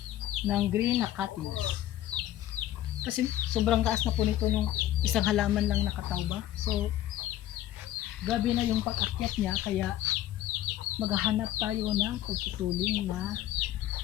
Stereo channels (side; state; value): right; quieter; 13.3 dB